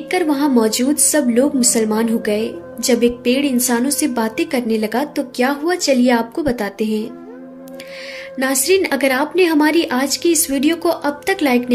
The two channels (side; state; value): both; identical; correlation 1.00